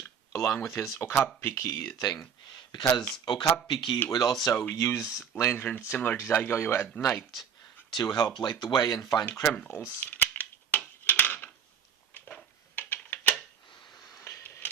along with his Okappiki thing, because Okappiki would also use lanterns similar to DaiGoyo at night to help light the way and find criminals.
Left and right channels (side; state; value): left; quieter; 7.7 dB